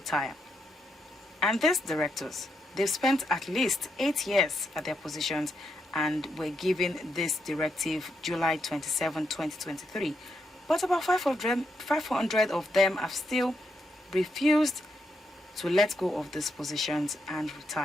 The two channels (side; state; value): both; normal; correlation 0.81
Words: And these directors, they've spent at least 8 years at their positions and were given this directive July 27, 2023. But about 500 of them have still refused to let go of these positions and